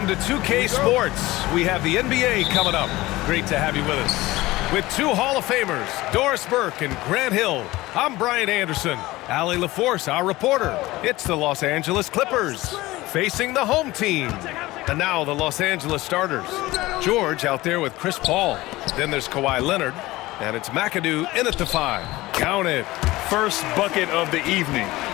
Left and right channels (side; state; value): right; quieter; 18.9 dB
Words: to 2K Sports. We have the NBA coming up. Great to have you with us. With two Hall of Famers, Doris Burke and Grant Hill, I'm Brian Anderson. Allie LaForce, our reporter. It's the Los Angeles Clippers facing the home team. And now the Los Angeles starters. George out there with Chris Paul. Then there's Kawhi Leonard. And it's McAdoo in at the 5. Count it. First bucket of the evening.